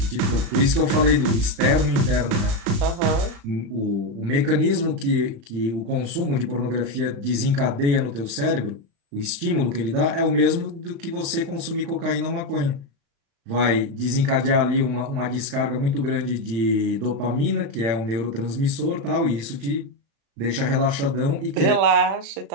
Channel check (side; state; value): left; late; 35 ms